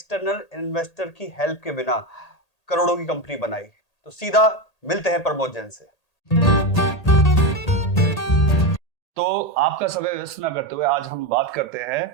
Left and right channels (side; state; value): right; late; 1.8 ms